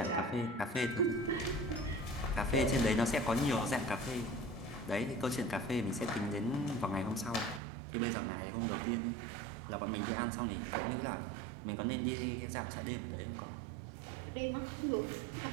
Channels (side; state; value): left; drops out; at 7.6 s